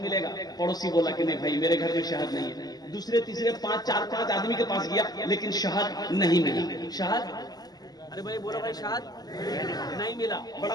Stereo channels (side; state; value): right; late; 0.19 ms